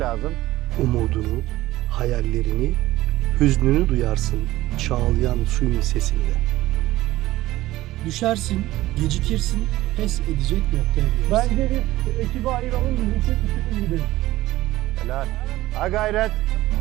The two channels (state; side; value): quieter; left; 16.7 dB